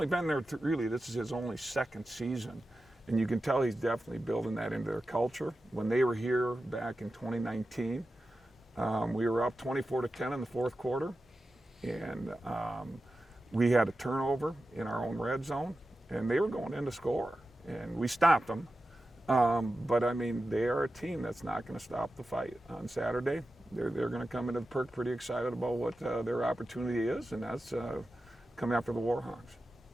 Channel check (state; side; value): normal; both; correlation 0.93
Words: been there really, this is his only second season. And you can tell he's definitely building that into their culture. When they were here back in 2019, we were up 24-10 in the fourth quarter, and we had a turnover in our own red zone, and they were going in to score, and we stopped them. But I mean, they are a team that's not going to stop the fight on Saturday. They're going to come into the perk pretty excited about what their opportunity is, and that's coming after the Warhawks.